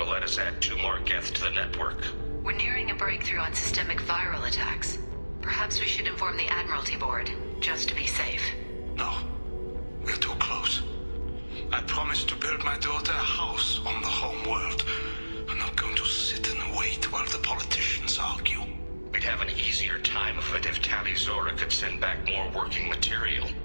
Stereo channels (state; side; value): inverted; both; correlation -1.00